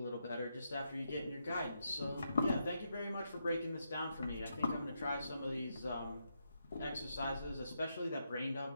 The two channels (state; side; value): inverted; both; correlation -0.82